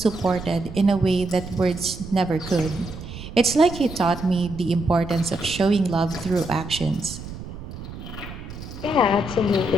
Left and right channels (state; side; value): noise; right; rumble, 11 dB below the sound